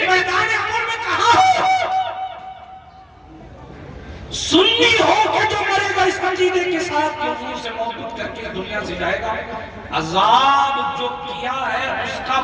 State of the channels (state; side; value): identical; both; correlation 1.00